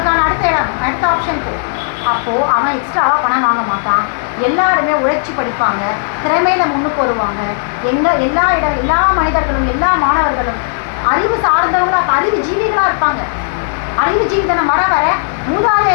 அடுத்த ஆப்ஷன் போ. அப்போது அவன் எக்ஸ்ட்ராவாக பணம் வாங்க மாட்டான். எல்லாருமே உழைச்சி படிப்பாங்க, திறமையில் முன்னுக்கு வருவாங்க. எல்லா மனிதர்களும் எல்லா மாணவர்களும் அறிவு சார்ந்தவங்களாக, அறிவு ஜீவிகளாக இருப்பாங்க. அறிவு ஜீவிதனம் வர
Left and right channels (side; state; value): right; silent; 71 dB below the other